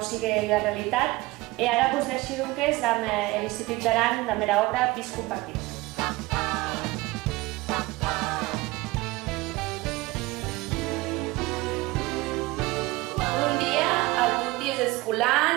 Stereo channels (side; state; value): left; quieter; 21.0 dB